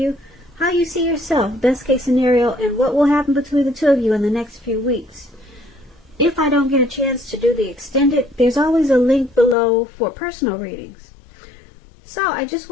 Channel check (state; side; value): drops out; right; at 9.6 s